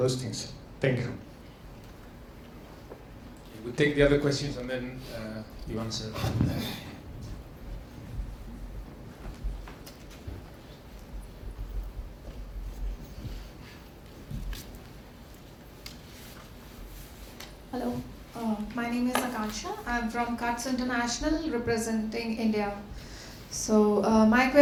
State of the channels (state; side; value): identical; both; correlation 1.00